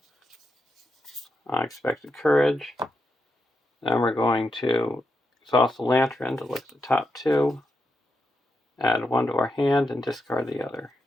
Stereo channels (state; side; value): normal; both; correlation 0.85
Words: Unexpected Courage. Then we're going to exhaust the Lantern to look at the top 2, add 1 to our hand, and discard the other.